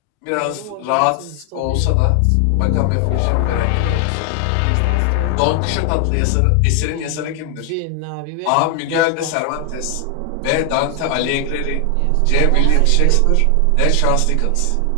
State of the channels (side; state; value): both; different; correlation 0.00